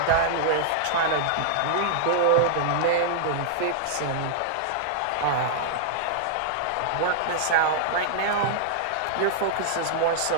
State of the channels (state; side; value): different; both; correlation -0.01